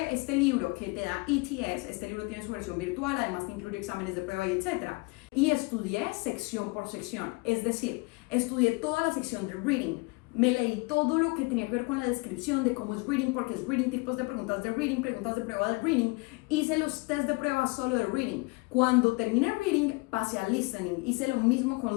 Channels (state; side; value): quieter; right; 26.8 dB